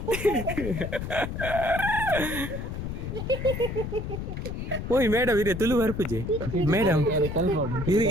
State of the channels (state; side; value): noise; left; rumble, 5 dB below the sound